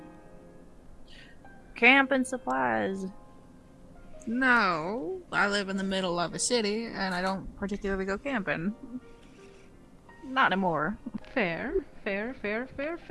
Camping supplies. No, I live in the middle of a city, and I don't particularly go camping. Not anymore. Fair.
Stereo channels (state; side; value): identical; both; correlation 1.00